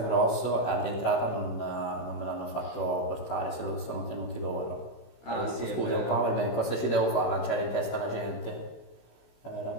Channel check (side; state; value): right; late; 16 ms